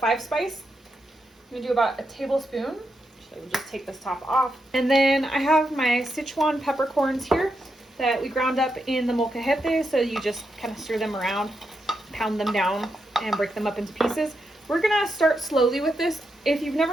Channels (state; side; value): normal; both; correlation 0.84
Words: spice. I'm gonna do about a tablespoon. So we'll just take this top off. And then I have my Sichuan peppercorns here. that we ground up in the molcajete. So you just kind of stir them around, pound them down, and break them up into pieces. We're gonna start slowly with this. If you've